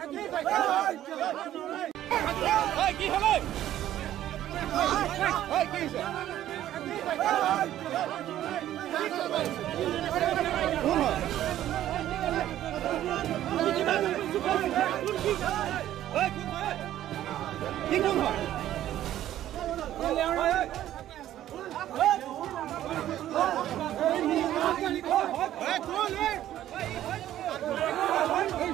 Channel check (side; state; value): left; quieter; 12.5 dB